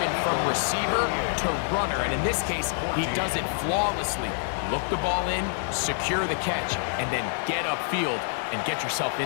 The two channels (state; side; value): silent; right; 60 dB below the other